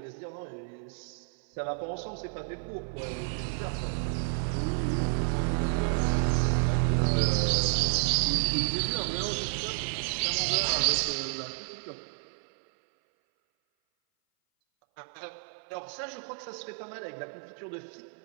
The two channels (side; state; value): left; silent; 57 dB below the other